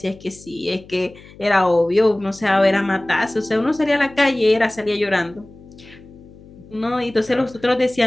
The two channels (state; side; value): noise; left; hum, 22 dB below the sound